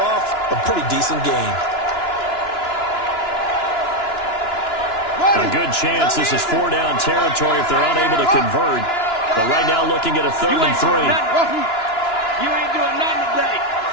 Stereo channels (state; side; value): late; right; 2.9 ms